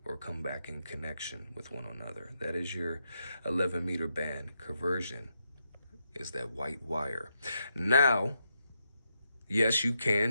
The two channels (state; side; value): inverted; both; correlation -0.83